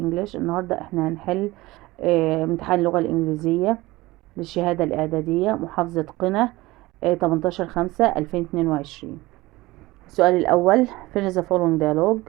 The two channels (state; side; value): quieter; left; 19.8 dB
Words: النهاردة احنا هنحل امتحان اللغة الإنجليزية للشهادة الإعدادية محافظة قنا 18/5/2022. السؤال الأول: finish the following